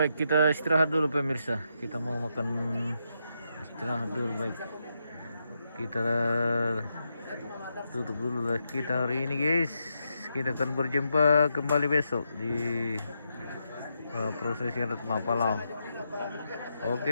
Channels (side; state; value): both; inverted; correlation -0.82